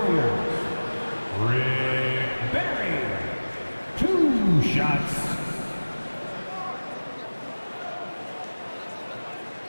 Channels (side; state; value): both; inverted; correlation -1.00